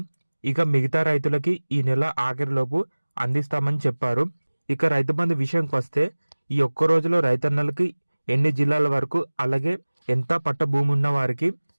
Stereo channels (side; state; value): both; inverted; correlation -1.00